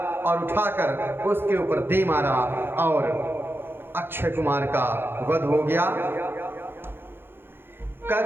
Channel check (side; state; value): left; late; 0.10 ms